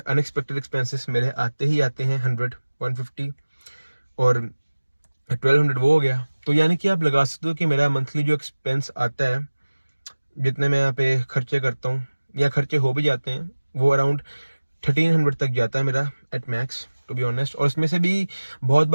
एक्सपेंसेस मेरे आते ही आते हैं 100, 150 और 1200, वो हो गया। तो यानी कि आप लगा सकते हो कि मेरा मंथली जो एक्सपेंस आता है, जितने मैं यहाँ पे खर्चे करता हूँ या खर्चे हो भी जाते हैं, वो अराउंड 1300 तक जाता है मेरा at max, to be honest. और उसमें से भी बहुत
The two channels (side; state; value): both; inverted; correlation -1.00